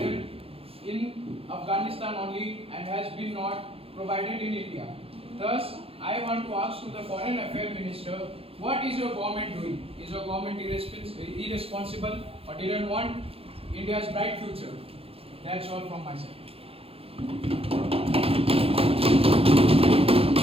in Afghanistan only and has been not provided in India. Thus, I want to ask to the Foreign Affairs Minister, what is your government doing? Is your government irresponsible or didn't want India's bright future? That's all from my side.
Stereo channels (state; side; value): late; left; 0.28 ms